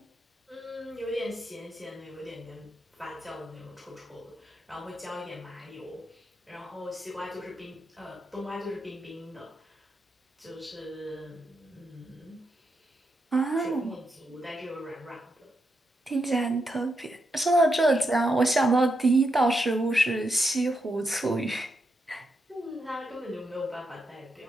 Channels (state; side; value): normal; both; correlation 0.83